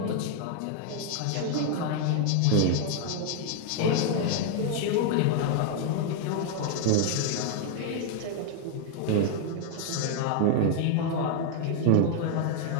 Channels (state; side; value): different; both; correlation 0.00